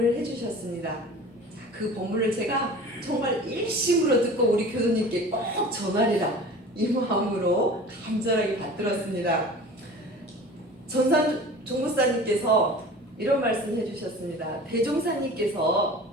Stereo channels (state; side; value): normal; both; correlation 0.40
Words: 해주셨습니다. 그 법문을 제가 정말 일심으로 듣고 우리 교도님께 꼭 전하리라 이 마음으로 간절하게 받들었습니다. 전산종고사님께서 이런 말씀 해주셨습니다. 대종사님께서